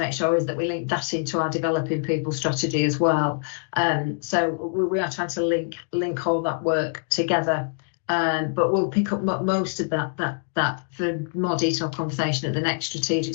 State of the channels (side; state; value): right; silent; 62 dB below the other